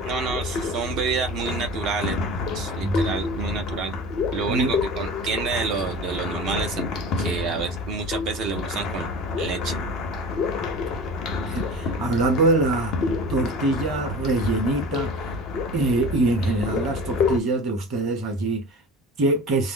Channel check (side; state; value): both; normal; correlation 0.36